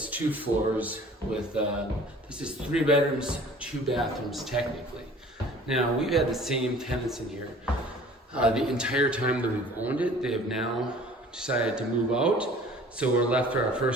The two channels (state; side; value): normal; both; correlation 0.48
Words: 2 floors with, this is 3 bedrooms, 2 bathrooms technically. Now, we've had the same tenants in here the entire time that we've owned it. They have now decided to move out. So we're left for our